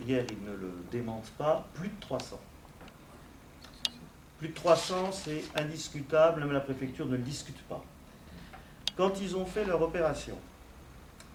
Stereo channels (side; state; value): both; identical; correlation 1.00